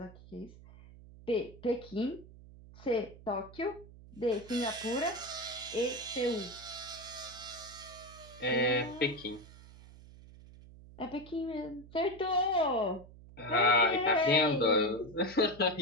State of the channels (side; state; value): right; noise; hum, 19 dB below the sound